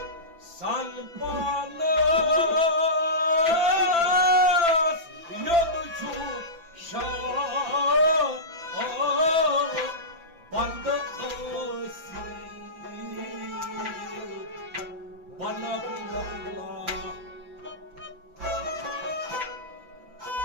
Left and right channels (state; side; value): late; left; 5.9 ms